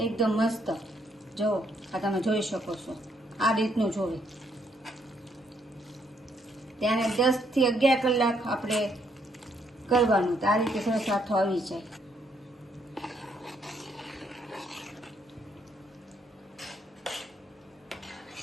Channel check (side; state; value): both; normal; correlation 0.72